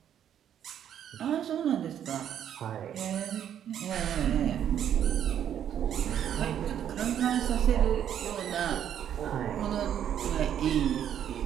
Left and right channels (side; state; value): left; quieter; 9.7 dB